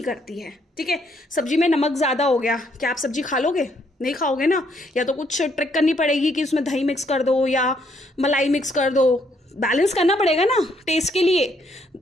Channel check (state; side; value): normal; both; correlation 0.71